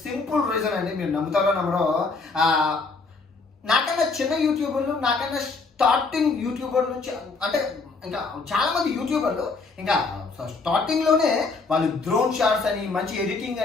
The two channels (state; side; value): quieter; right; 4.1 dB